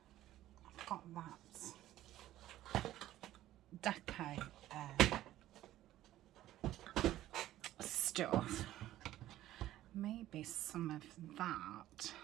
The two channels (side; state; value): left; quieter; 14.1 dB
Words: got that deco stuff. Maybe some of that.